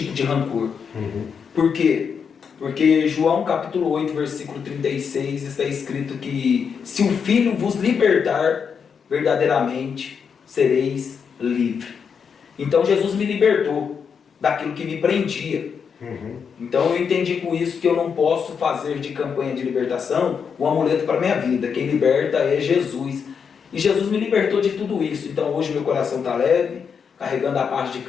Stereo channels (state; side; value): quieter; right; 6.5 dB